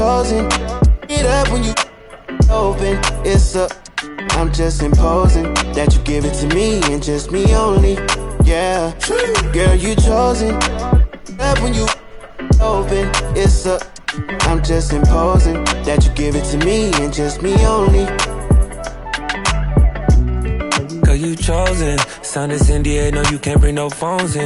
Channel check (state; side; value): identical; both; correlation 1.00